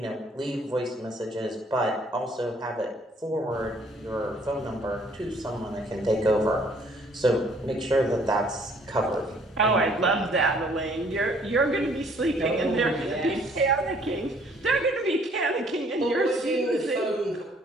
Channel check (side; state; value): both; normal; correlation 0.61